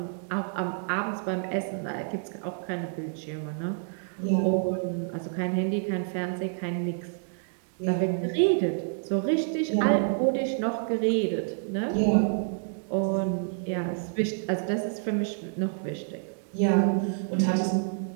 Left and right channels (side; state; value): left; silent; digital silence